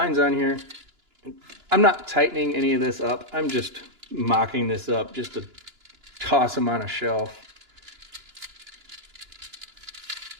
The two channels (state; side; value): late; left; 2.9 ms